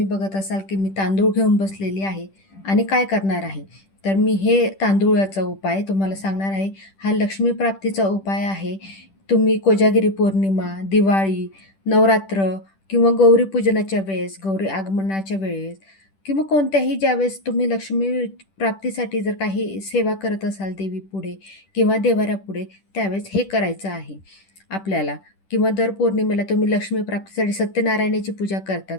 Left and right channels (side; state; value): right; late; 10 ms